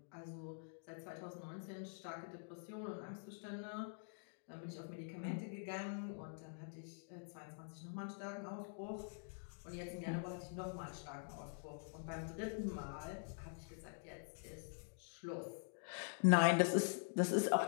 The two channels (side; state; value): right; silent; digital silence